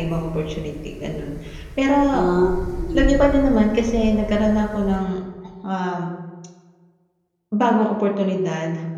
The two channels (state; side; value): identical; both; correlation 1.00